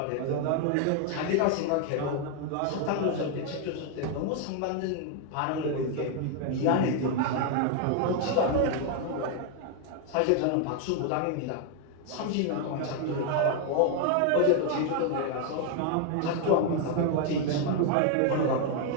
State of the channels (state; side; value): different; both; correlation 0.01